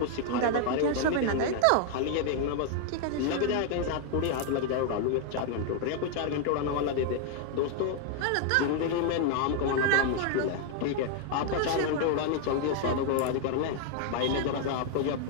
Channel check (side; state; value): both; different; correlation 0.00